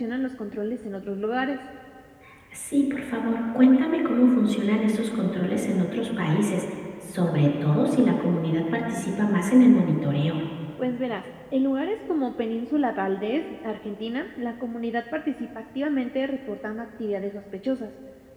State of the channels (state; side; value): identical; both; correlation 1.00